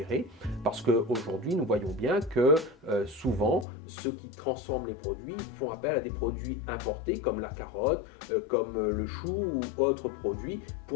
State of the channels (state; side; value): drops out; right; at 3.7 s